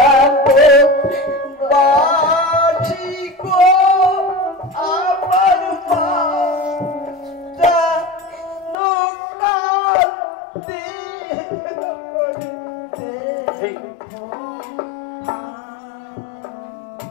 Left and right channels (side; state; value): right; drops out; at 8.8 s